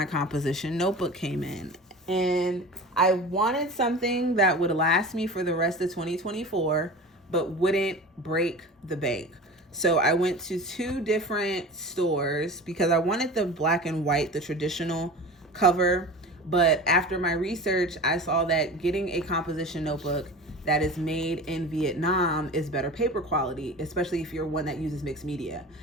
composition notebook came in. And I wanted something that would last me for the rest of 2024, but wouldn't break the bank. So I went to 2 different stores because I wanted the black and white, the traditional cover. But after my research, I saw that getting a composition notebook that is made in Vietnam is better paper quality, especially if you're one that uses mixed media.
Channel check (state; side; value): normal; both; correlation 0.35